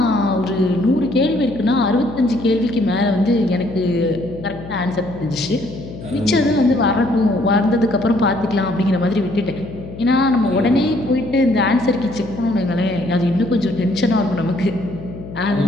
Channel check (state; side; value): noise; left; hum, 13 dB below the sound